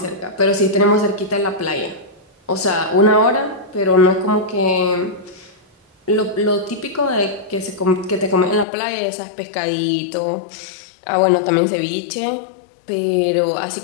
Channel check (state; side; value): drops out; right; at 8.7 s